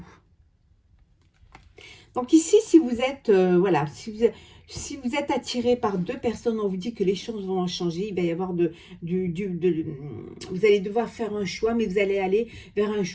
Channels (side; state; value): both; identical; correlation 1.00